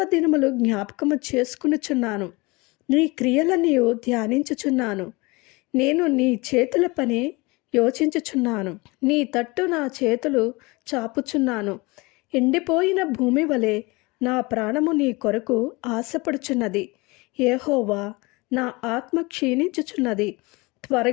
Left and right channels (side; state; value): right; quieter; 24.8 dB